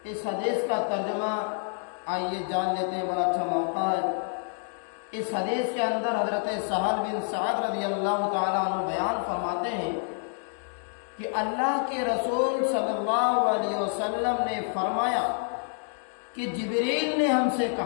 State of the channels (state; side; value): silent; right; 59 dB below the other